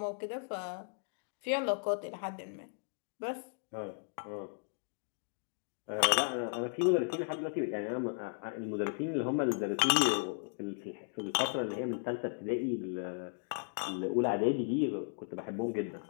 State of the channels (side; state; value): right; silent; digital silence